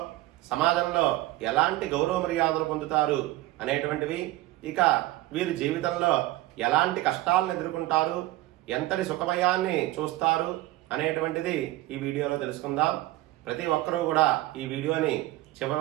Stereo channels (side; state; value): left; quieter; 17.4 dB